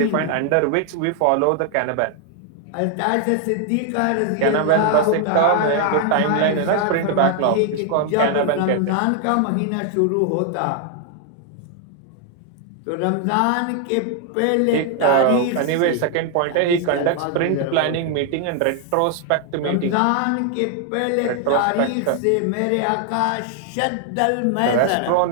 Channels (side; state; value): both; different; correlation 0.00